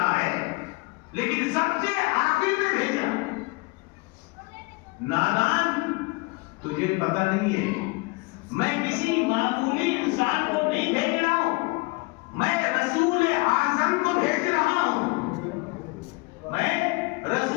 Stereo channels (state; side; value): quieter; right; 26.6 dB